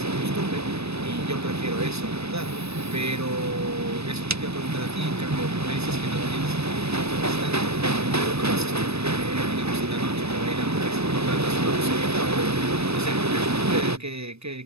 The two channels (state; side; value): late; left; 0.79 ms